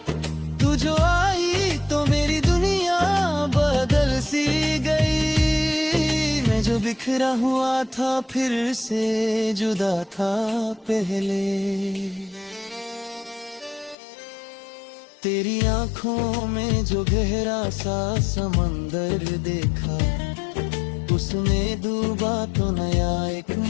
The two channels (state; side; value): drops out; right; at 14.0 s